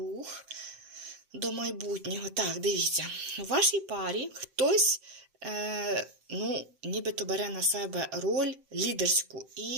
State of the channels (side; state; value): left; late; 7.7 ms